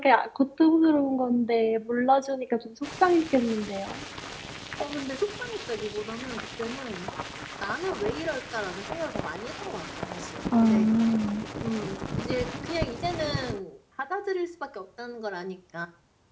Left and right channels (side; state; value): both; identical; correlation 1.00